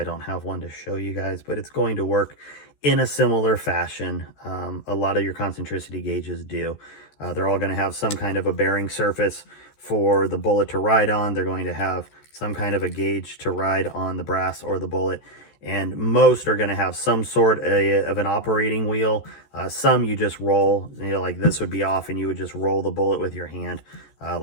don't have one to show you guys, but it's going to work in a similar fashion. A lot of your concentricity gauges do. They're all going to have some kind of a bearing surface for the bullet to ride on. They're going to have some kind of a gauge to ride on the brass or the bullet. And most are going to have some sort of an operating wheel. Some you just roll, you know, like this would be off and you would just roll the bullet with your hand,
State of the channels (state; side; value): late; right; 14 ms